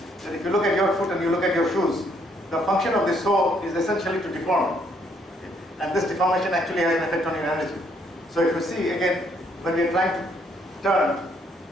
That if you look at your foot and you look at your shoes, the function of the sole is essentially to deform. And this deformation actually has an effect on your energy. So if you see, again, when we are trying to turn,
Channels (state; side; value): normal; both; correlation 0.69